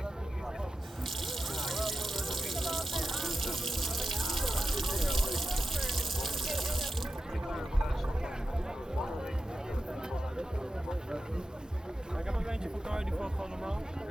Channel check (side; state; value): both; normal; correlation 0.91